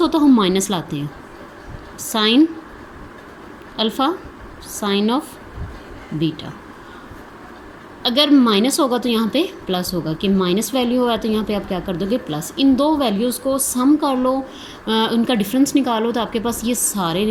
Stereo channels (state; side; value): identical; both; correlation 1.00